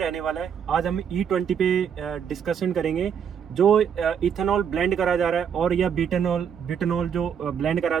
वाला है। आज हम E20 पे डिस्कशन करेंगे। जो इथेनॉल ब्लेंड करा जा रहा है और या बिटनॉल जो ब्लेंड करा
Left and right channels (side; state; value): left; quieter; 7.7 dB